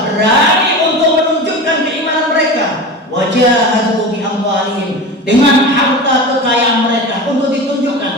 berani untuk menunjukkan keimanan mereka, wajahadu bi amwalihim, dengan harta kekayaan mereka untuk ditunjukkan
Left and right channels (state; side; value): normal; both; correlation 0.29